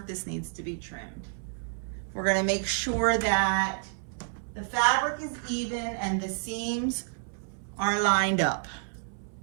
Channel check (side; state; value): left; silent; 58 dB below the other